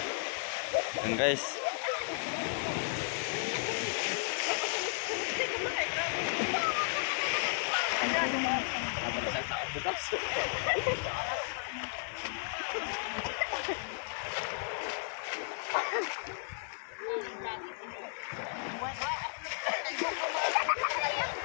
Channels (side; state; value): right; silent; 55 dB below the other